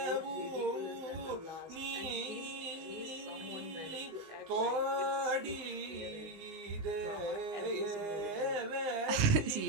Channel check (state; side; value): late; left; 19 ms